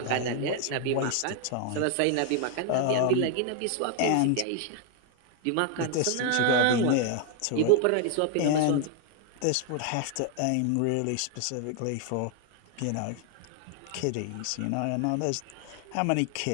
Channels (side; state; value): both; different; correlation 0.00